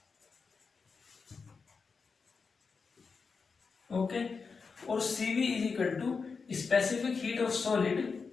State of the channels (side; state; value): right; quieter; 5.0 dB